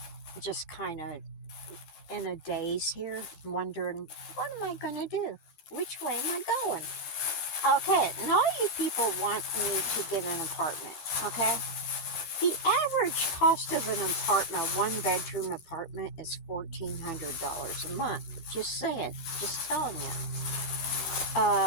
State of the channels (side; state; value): right; late; 12 ms